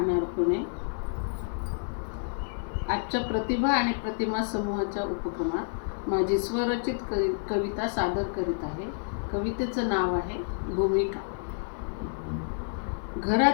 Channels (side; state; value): right; silent; 58 dB below the other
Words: पुणे. आजच्या प्रतिभा आणि प्रतिमा समूहाच्या उपक्रमात माझी स्वरचित कविता सादर करीत आहे. कवितेचं नाव आहे भूमिका.